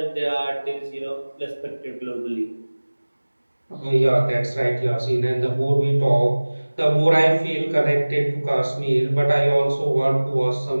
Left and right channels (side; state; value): both; inverted; correlation -1.00